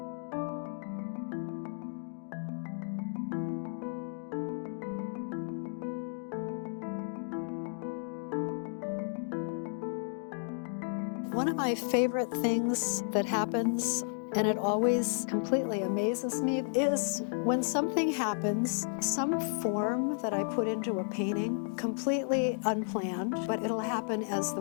One of my favorite things that happens, and it always completely amazes me, is when something happens, some form that I put into a painting, completely unplanned, but it'll happen as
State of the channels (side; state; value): right; silent; digital silence